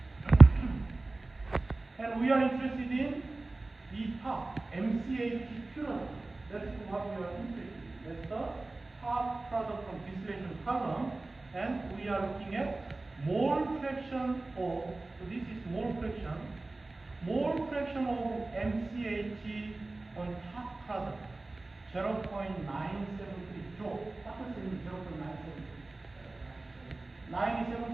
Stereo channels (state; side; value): quieter; left; 3.1 dB